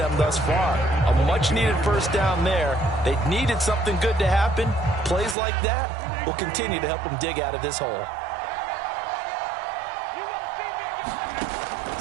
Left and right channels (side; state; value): left; drops out; at 5.4 s